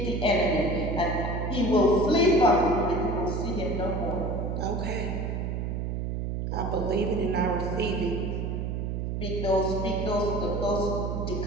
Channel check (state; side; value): noise; right; hum, 2 dB below the sound